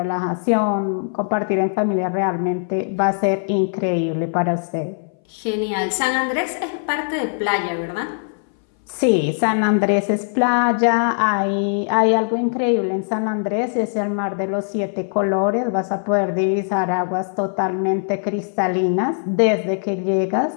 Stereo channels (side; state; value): right; silent; 62 dB below the other